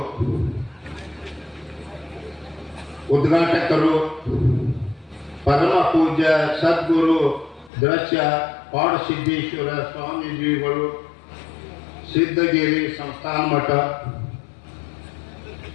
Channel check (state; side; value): drops out; right; at 7.7 s